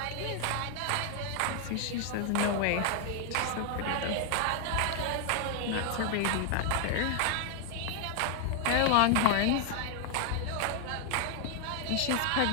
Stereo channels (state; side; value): different; both; correlation 0.00